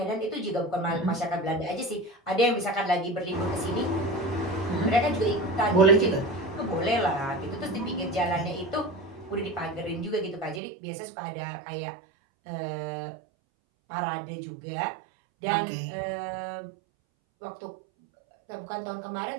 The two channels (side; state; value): left; drops out; at 10.6 s